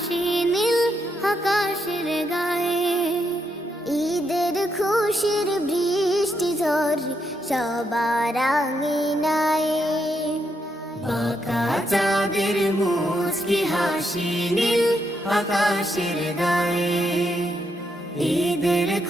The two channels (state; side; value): normal; both; correlation 0.79